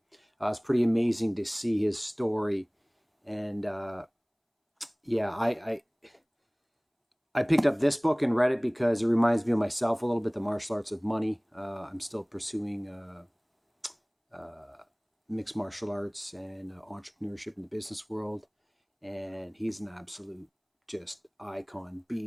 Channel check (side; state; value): both; identical; correlation 1.00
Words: It's pretty amazing to see his story. And yeah, I picked up this book and read it because it reminds me of myself a little bit, The Martial Arts of Money. I'm still pursuing mixed martial arts and entrepreneurship in the business world. And he's an absolute just icon